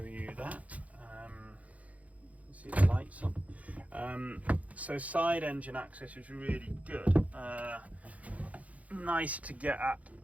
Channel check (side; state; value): left; late; 0.069 ms